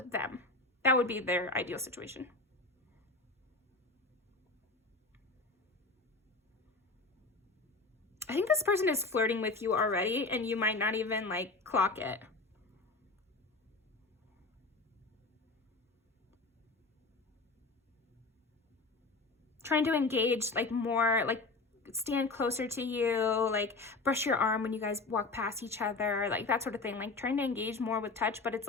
them. That would be their ideal situation. I think this person is flirting with you already and you might not even like clock it. Trying to engage like more, like stand closer to you, like brush your arm when you guys walk past each other, like that sort of thing. Like trying to engage more with touch, but it's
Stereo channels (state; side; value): quieter; right; 3.6 dB